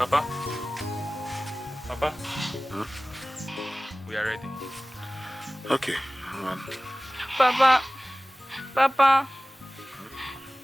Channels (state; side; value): normal; both; correlation 0.98